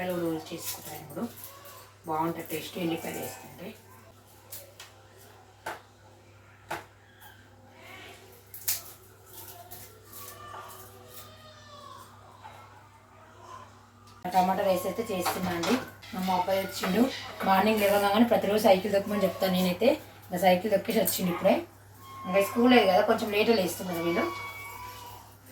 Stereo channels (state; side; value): identical; both; correlation 1.00